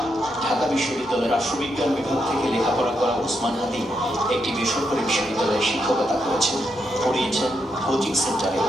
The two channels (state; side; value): normal; both; correlation 0.81